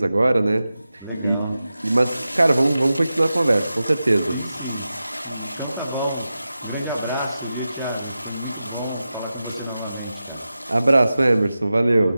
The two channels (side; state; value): both; inverted; correlation -0.93